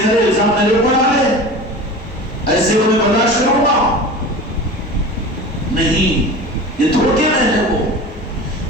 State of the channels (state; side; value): normal; both; correlation 0.35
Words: کرے، الزام میرے اوپر ڈالے، ایسے کو میں برداشت کروں گا نہیں. یہ دھوکے میں ہے وہ.